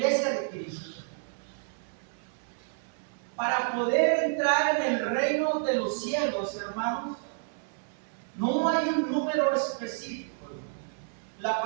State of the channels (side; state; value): left; silent; 58 dB below the other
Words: de Cristo. Para poder entrar en el reino de los cielos, hermanos, no hay un número específico. La